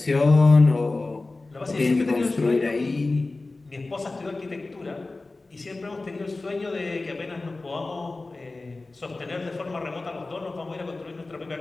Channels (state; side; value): quieter; right; 3.3 dB